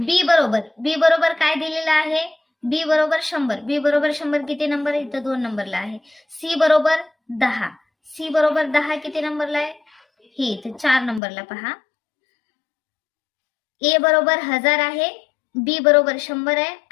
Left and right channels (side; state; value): right; drops out; at 11.2 s